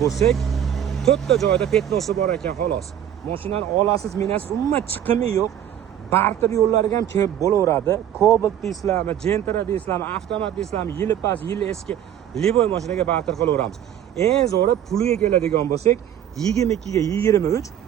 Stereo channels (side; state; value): left; quieter; 10.3 dB